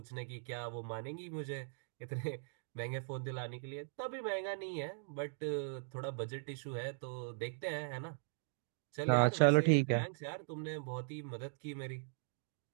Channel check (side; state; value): left; silent; digital silence